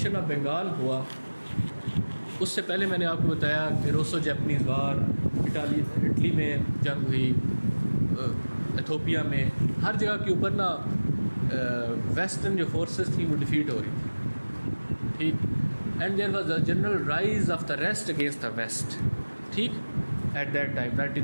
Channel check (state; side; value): inverted; both; correlation -1.00